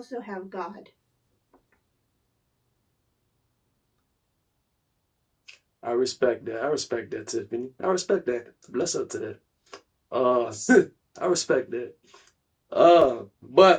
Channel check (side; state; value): both; identical; correlation 1.00